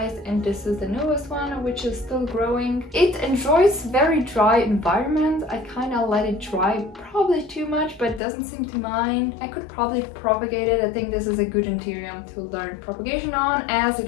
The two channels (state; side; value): drops out; right; at 8.2 s